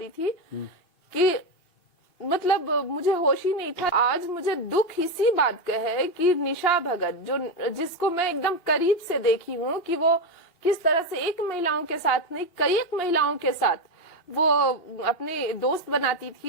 थी कि मतलब मुझे होश ही नहीं था। आज मुझे दुख इसी बात का है कि निशा भगत, जिसको मैं एकदम करीब से देखी हूँ कि वो किस तरह से एक महिलाओं के साथ नहीं, कई एक महिलाओं के साथ वो अपने दोस्त बनाती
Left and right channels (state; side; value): late; right; 2.9 ms